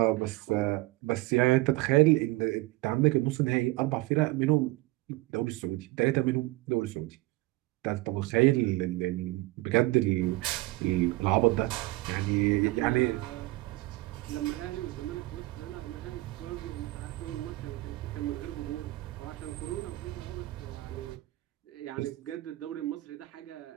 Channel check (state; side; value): quieter; left; 20.1 dB